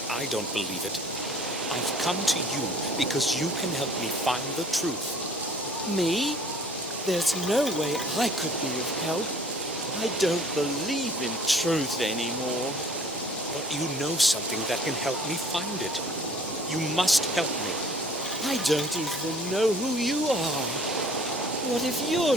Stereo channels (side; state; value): both; normal; correlation 0.52